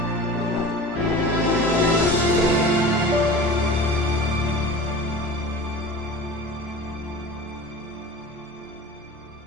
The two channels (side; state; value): both; normal; correlation 0.37